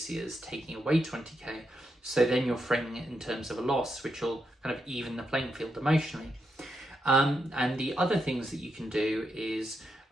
as taking away 20k. So then you're framing it in terms of a loss, which will kind of even the playing field emotionally. And the other things that you can do is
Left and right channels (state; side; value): normal; both; correlation 0.83